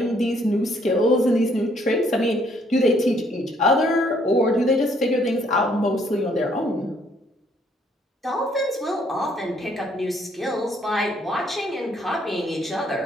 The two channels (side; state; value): both; normal; correlation 0.66